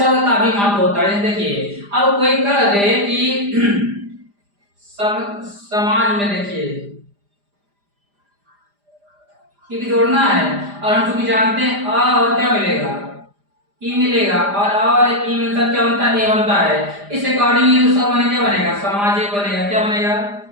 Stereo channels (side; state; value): left; late; 5.0 ms